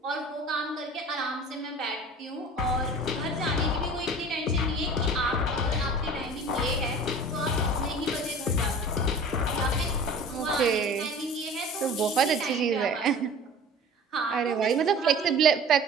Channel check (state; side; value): normal; both; correlation 0.42